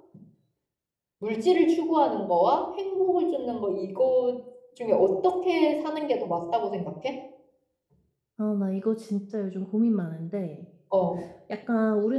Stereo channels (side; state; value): both; identical; correlation 1.00